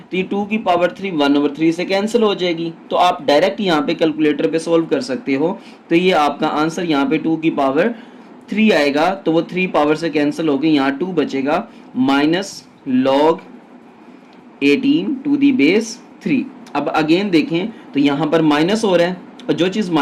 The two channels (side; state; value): both; identical; correlation 1.00